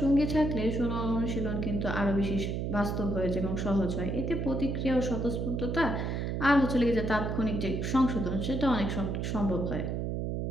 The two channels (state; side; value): noise; right; hum, 1 dB below the sound